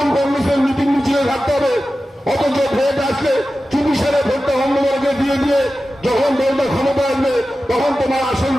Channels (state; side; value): normal; both; correlation 0.94